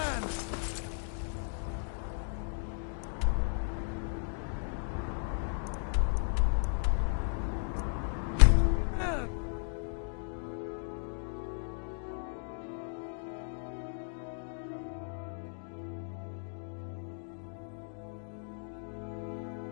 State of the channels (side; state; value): right; silent; digital silence